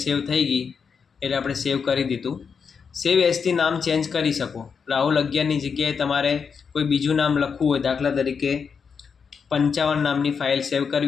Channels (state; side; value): quieter; right; 6.1 dB